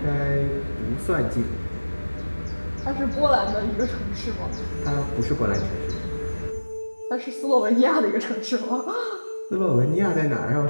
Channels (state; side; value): inverted; both; correlation -1.00